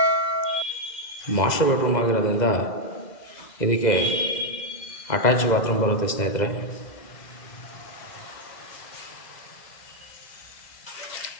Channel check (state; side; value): late; right; 2.0 ms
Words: ಮಾಸ್ಟರ್ ಬೆಡ್ರೂಮ್ ಆಗಿರೋದ್ರಿಂದ ಇದಕ್ಕೆ ಅಟ್ಯಾಚ್ ಬಾತ್ರೂಮ್ ಬರುತ್ತೆ ಸ್ನೇಹಿತರೆ.